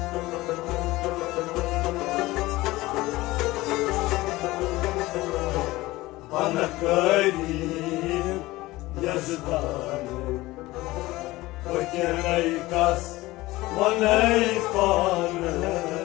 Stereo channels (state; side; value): quieter; right; 19.0 dB